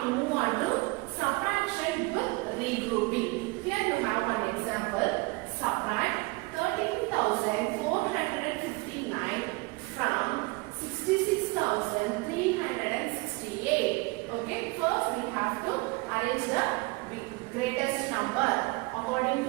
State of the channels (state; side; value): quieter; left; 25.4 dB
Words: move on to subtraction with regrouping. Here you have one example. Subtract 13,459 from 66,368. Okay, first we have to arrange the greatest number according